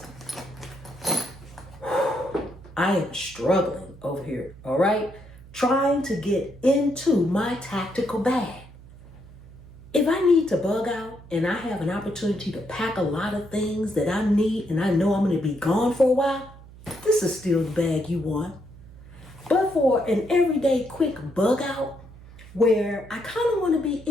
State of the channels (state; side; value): noise; right; hum, 20 dB below the sound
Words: I am struggling over here, all right? Trying to get into my tactical bag. If I need to bug out and I have an opportunity to pack a lot of things that I need and I know I'm going to be gone for a while, this is still the bag you want. But for an everyday quick bug out where I kind of want to be